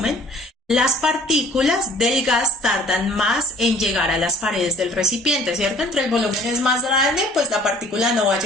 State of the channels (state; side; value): normal; both; correlation 0.52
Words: las partículas del gas tardan más en llegar a las paredes del recipiente, ¿cierto? Entre el volumen es más grande, pues la partícula no va a